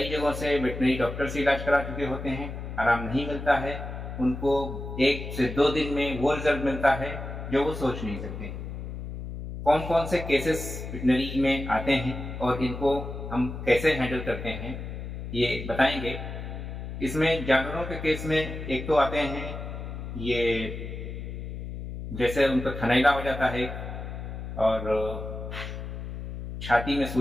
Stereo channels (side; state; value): left; noise; hum, 8 dB below the sound